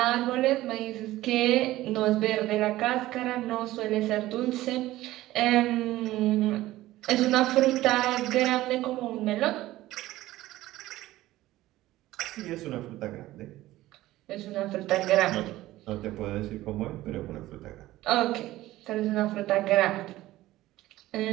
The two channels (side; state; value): left; quieter; 16.2 dB